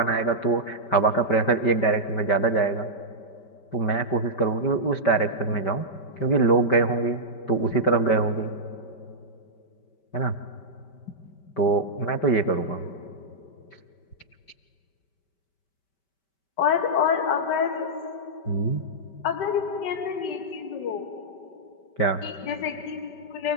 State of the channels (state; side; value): late; right; 5.2 ms